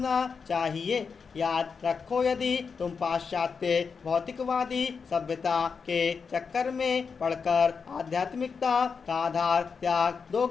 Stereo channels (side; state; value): right; quieter; 5.6 dB